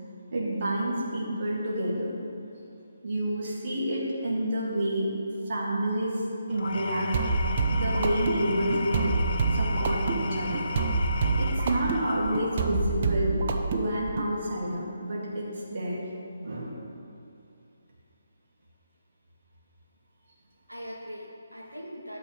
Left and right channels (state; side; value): inverted; both; correlation -0.79